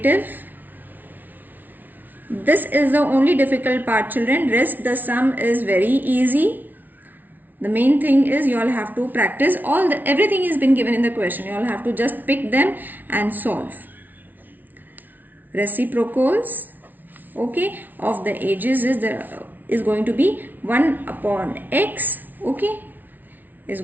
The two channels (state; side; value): late; left; 0.083 ms